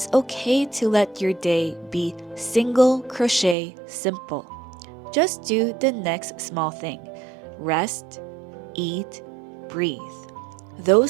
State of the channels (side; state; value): left; drops out; at 3.6 s